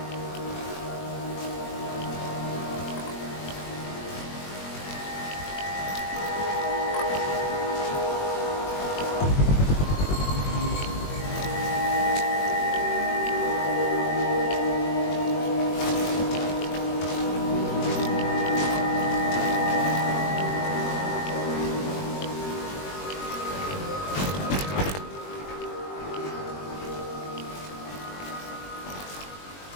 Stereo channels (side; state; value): right; late; 21 ms